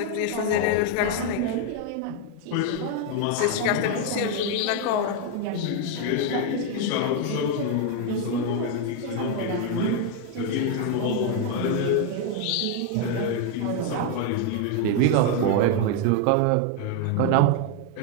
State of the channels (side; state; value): both; different; correlation 0.01